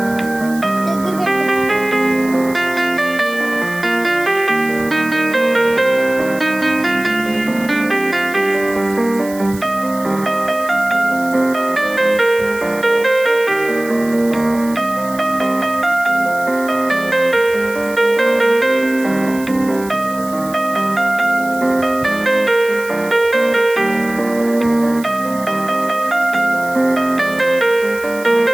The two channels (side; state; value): right; noise; hiss, 17 dB below the sound